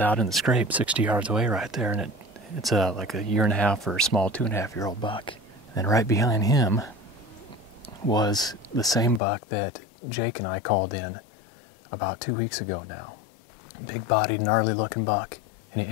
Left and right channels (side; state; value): right; drops out; at 9.2 s